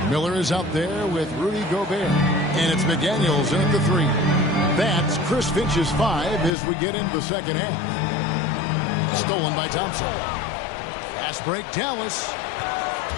Miller is out there with Rudy Gobert. And it's McDaniels in the 3. That's Chris Finch's 5 as we get into the second half. Stolen by Thompson. Fast break, Dallas.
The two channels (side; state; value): right; drops out; at 6.5 s